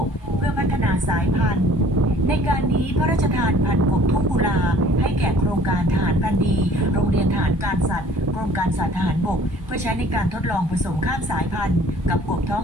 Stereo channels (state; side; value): normal; both; correlation 0.53